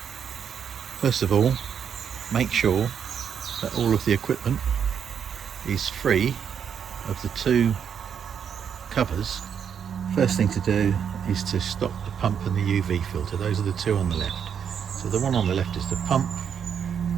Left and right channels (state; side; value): quieter; left; 7.8 dB